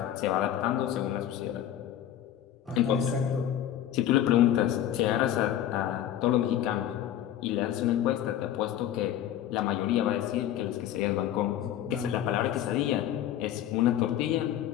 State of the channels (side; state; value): right; quieter; 11.3 dB